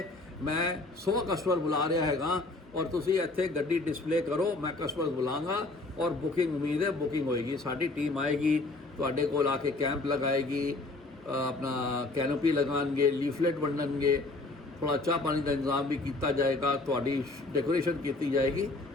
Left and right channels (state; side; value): quieter; right; 3.1 dB